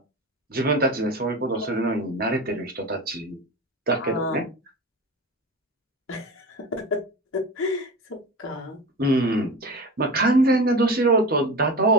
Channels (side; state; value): both; normal; correlation 0.29